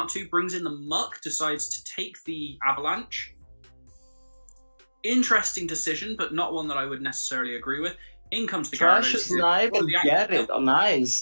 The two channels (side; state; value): both; inverted; correlation -1.00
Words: to, brings in the Muck, decides to take the Avalanche. Interesting decision, but not one that I would necessarily agree with. In comes the Gyarados. Snipe and get it. Oh,